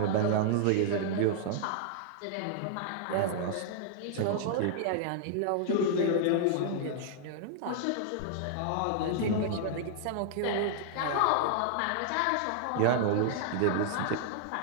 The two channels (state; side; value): different; both; correlation -0.01